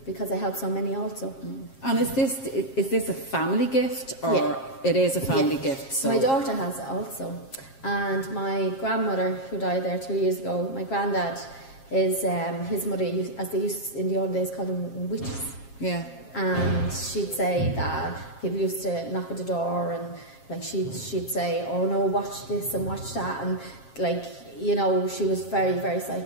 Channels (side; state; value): right; late; 7.5 ms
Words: because I help so many also. And is this a family gift, or it is a family gift? So my daughter has it also, and my grandmother, who died there 2 years ago, my granddad is his mother, as they used in the old days, called them witches. Yeah. And she'd say that people used to knock at the door, and she'd say, "Oh no, watch this and watch that," and she was very, very